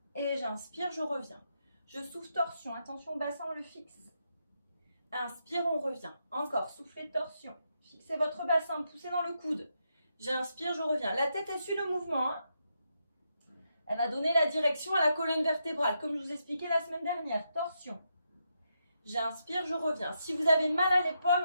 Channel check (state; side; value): inverted; both; correlation -0.82